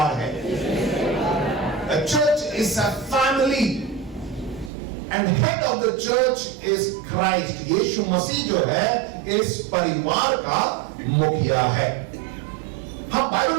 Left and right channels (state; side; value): drops out; left; at 4.7 s